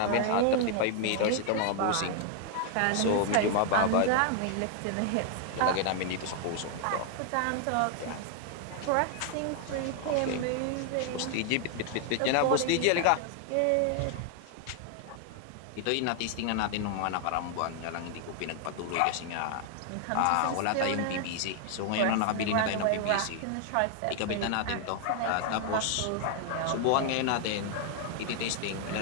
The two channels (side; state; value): both; different; correlation 0.00